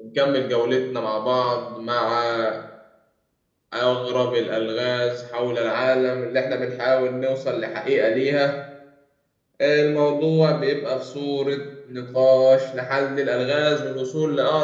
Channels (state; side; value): identical; both; correlation 1.00